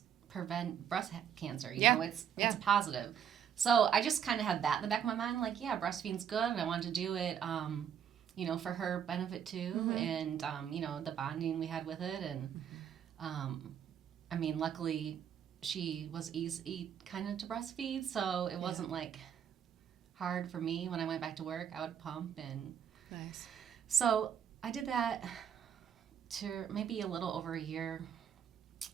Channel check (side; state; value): left; quieter; 8.6 dB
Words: prevent breast cancer. You know, it's positive. So I just kind of had that in the back of my mind, like, breastfeeding's good, and I wanted to do it. For her benefit too, and, the bonding we had with it. And, luckily she was easy kind of to breastfeed, so it wasn't, like, hard for me. When I went back to work, I would pump, and nice. So I did that to maybe a little over a year.